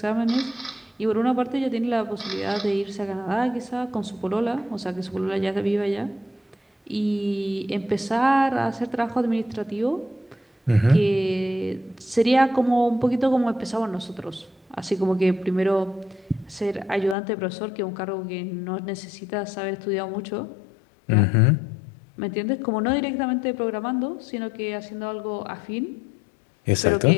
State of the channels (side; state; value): right; drops out; at 17.2 s